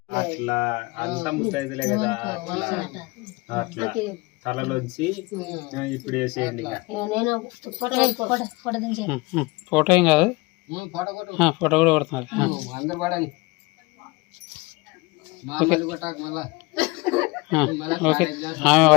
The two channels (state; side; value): quieter; right; 24.4 dB